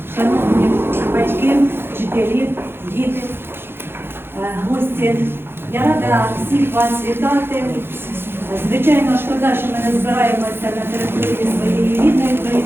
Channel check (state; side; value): late; left; 0.11 ms